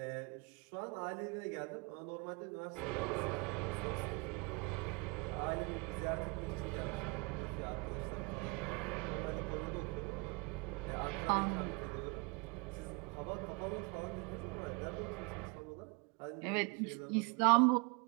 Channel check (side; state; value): left; quieter; 30.6 dB